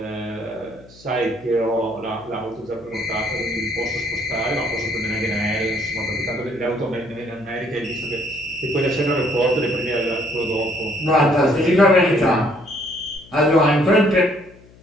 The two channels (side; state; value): left; noise; hum, 24 dB below the sound